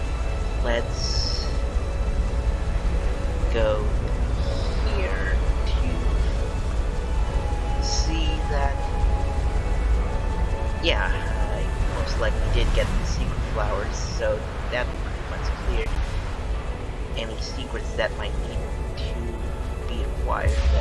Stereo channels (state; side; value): identical; both; correlation 1.00